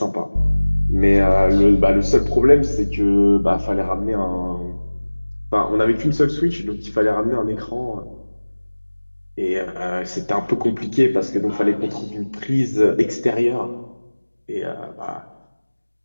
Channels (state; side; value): inverted; both; correlation -1.00